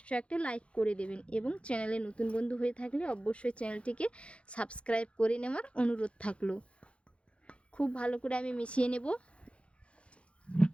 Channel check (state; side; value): late; right; 0.060 ms